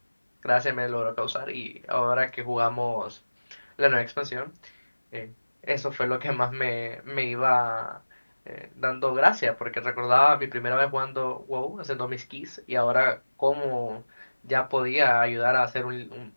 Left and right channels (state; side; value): inverted; both; correlation -1.00